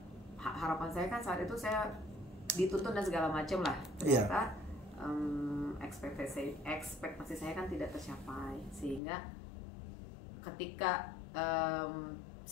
harapan saya kan saat itu saya dituntun dan segala macam lah. Ternyata ekspektasi saya kan tidak tercapai, sehingga ketika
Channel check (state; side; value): drops out; right; at 9.0 s